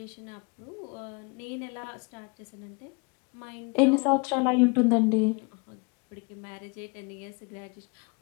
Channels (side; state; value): right; quieter; 31.4 dB